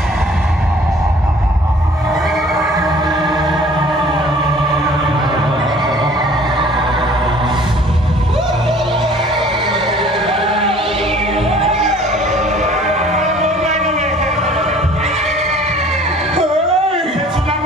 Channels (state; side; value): normal; both; correlation 0.52